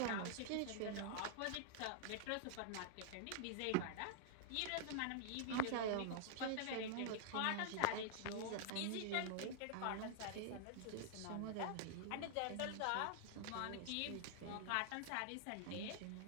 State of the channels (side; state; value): both; different; correlation -0.01